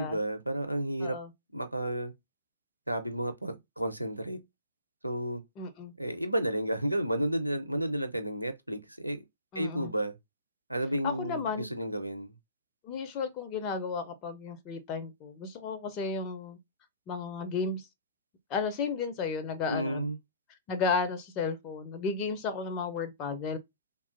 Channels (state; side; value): inverted; both; correlation -0.50